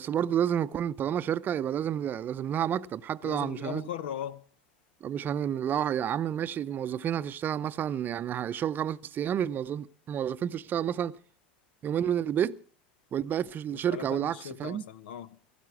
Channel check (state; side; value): quieter; left; 8.3 dB